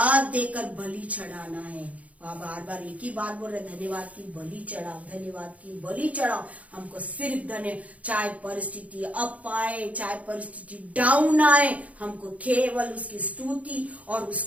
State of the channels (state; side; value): late; left; 0.068 ms